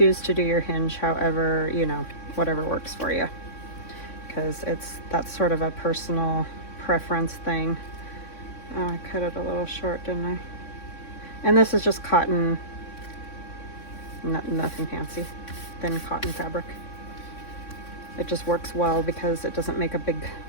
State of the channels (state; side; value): late; right; 3.6 ms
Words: to do your hinge however, you know, whatever works for you, because that's sort of a personal preference thing. Oh, I cut it a little short, didn't I? And this is just cotton, nothing fancy, thin cotton fabric. It just works well because it doesn't make a big